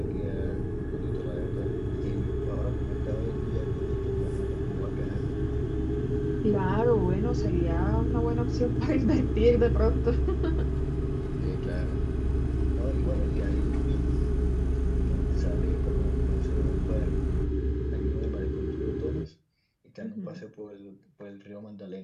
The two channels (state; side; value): identical; both; correlation 1.00